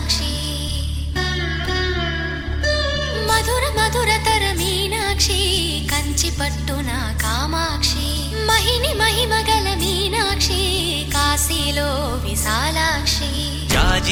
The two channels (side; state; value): both; identical; correlation 1.00